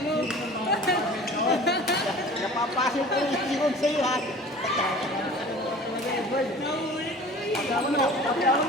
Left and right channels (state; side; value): normal; both; correlation 0.43